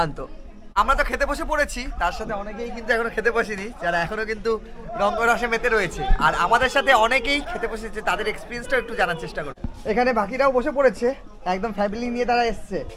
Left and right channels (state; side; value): identical; both; correlation 1.00